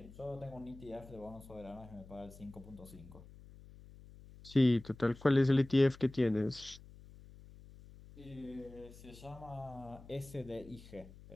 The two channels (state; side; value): noise; left; hum, 19 dB below the sound